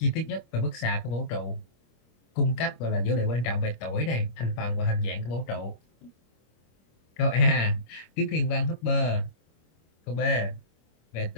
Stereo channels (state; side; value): late; right; 25 ms